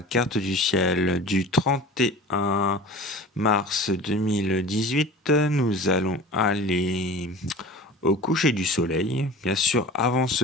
carte du ciel du 31 mars 2018. Nous allons aller au coucher du soleil. Bien sûr, avant ce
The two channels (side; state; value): both; normal; correlation 0.38